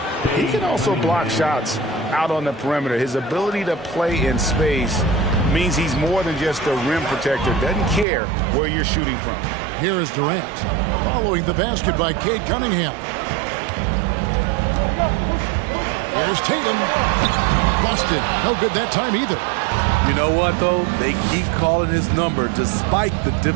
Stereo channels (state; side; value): drops out; left; at 8.1 s